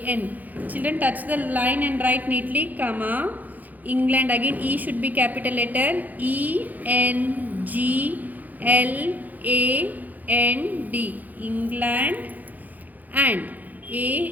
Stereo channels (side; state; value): left; late; 0.082 ms